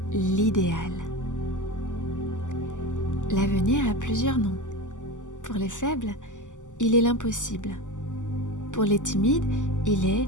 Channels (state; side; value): late; right; 0.86 ms